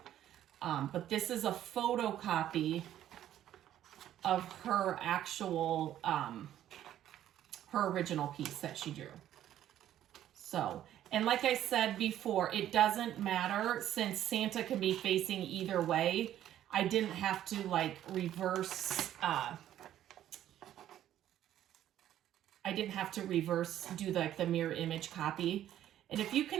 But this is a photocopy of her actual, her original piece that she drew. So, and like I said before, it doesn't matter since Santa can be facing either way. I didn't have to like reverse, do like the mirror image copy. And if you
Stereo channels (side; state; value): left; quieter; 11.8 dB